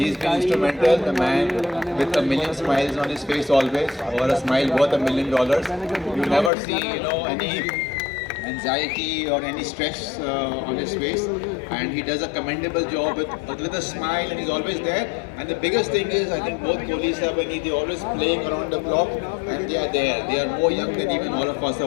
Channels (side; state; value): right; drops out; at 6.5 s